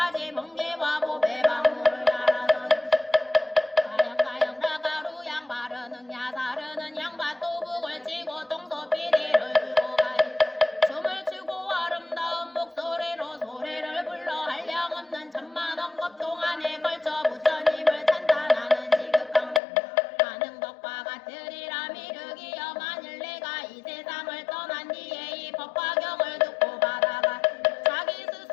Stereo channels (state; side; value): drops out; right; at 19.6 s